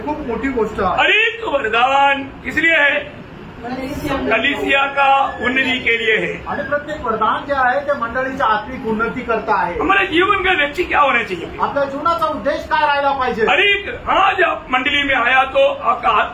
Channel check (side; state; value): both; identical; correlation 1.00